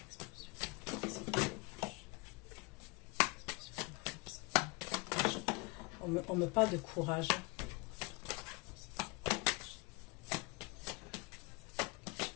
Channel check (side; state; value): right; quieter; 26.7 dB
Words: On me parle de courage.